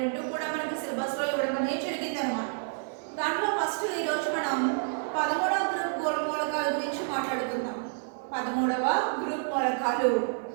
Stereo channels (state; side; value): silent; left; 58 dB below the other